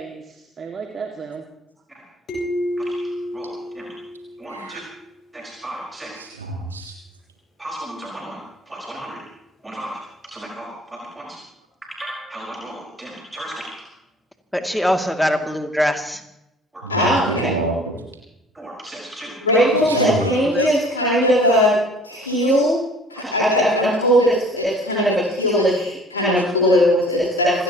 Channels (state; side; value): normal; both; correlation 0.50